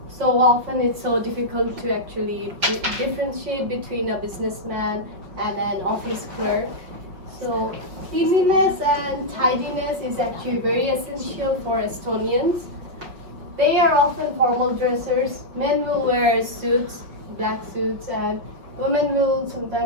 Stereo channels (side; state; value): left; late; 5.5 ms